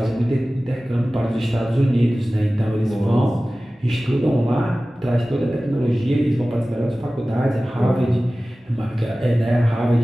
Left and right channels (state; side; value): normal; both; correlation 0.97